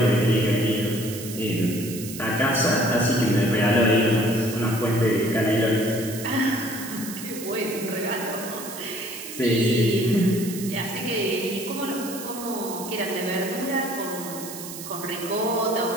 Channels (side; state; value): right; noise; hiss, 11 dB below the sound